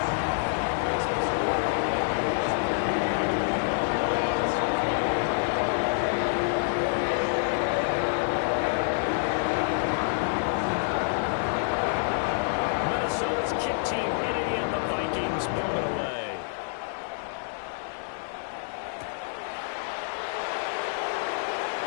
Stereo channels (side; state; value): right; silent; digital silence